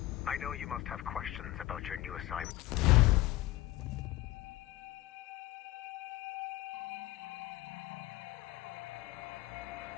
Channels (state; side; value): quieter; right; 16.6 dB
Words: I know you must have questions about your new assignment.